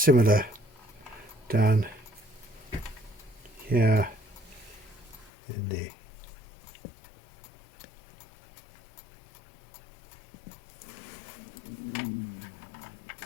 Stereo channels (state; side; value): drops out; right; at 5.3 s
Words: similar down here in the